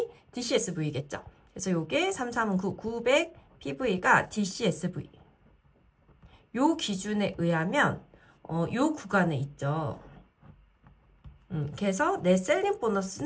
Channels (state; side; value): identical; both; correlation 1.00